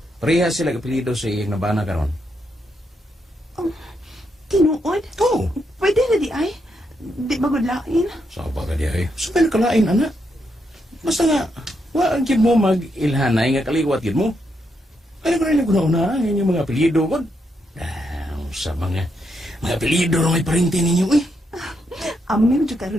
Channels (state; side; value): normal; both; correlation 0.80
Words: Parehas sila apelido sa iyang nabana karon. Tinuod? Oo. Pwede na di ay. Di magudlain. Sa ba ka diya eh? Sabay nakalain, anak. Basta nga, waan kid mo mag-ilhanay nga kaliwat kid mo. Ano ko rin naguna-una ang inyong mga apelido ko? Sa mga apelido na may parinti ninyo, eh. Amim juga